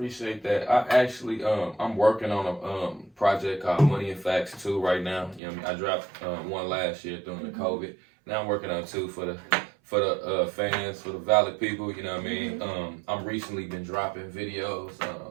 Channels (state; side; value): drops out; left; at 5.4 s